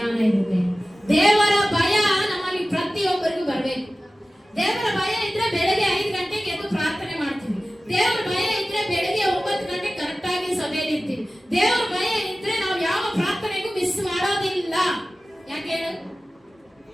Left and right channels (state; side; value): normal; both; correlation 0.96